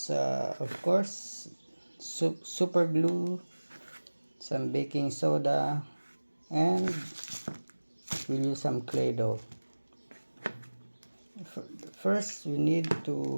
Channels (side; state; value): both; inverted; correlation -1.00